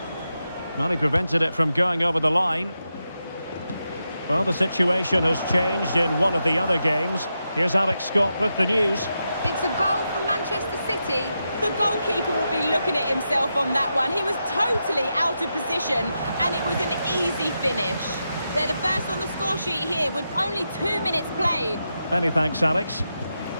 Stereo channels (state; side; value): inverted; both; correlation -0.87